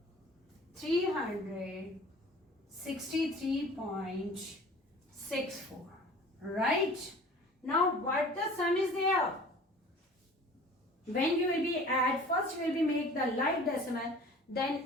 Right? Now what the sum is there? When you will be add, first you will be make the like decimal,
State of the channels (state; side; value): normal; both; correlation 0.45